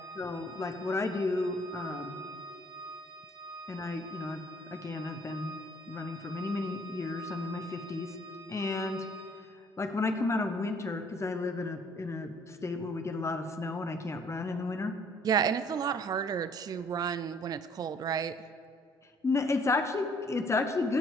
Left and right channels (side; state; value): both; normal; correlation 0.60